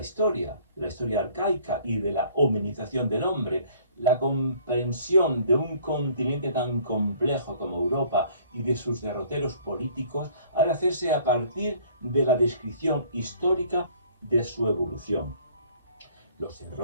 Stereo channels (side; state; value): both; inverted; correlation -0.55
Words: arcaica y de la hominización del hombre, la comprensión de un continente tan complejo como Europa y de sus derroteros políticos ha de hacerse a partir de la descripción histórica de su evolución. Los